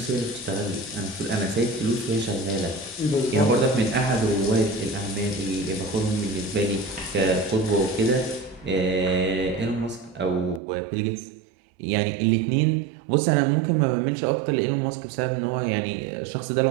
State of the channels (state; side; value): drops out; left; at 10.6 s